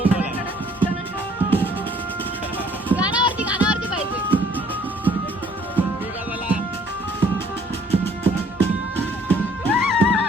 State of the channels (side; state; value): both; normal; correlation 0.60